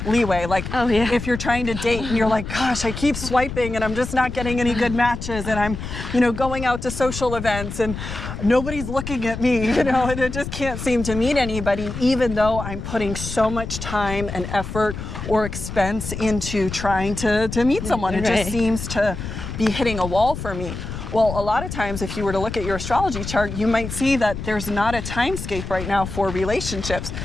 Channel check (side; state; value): left; noise; rumble, 7 dB below the sound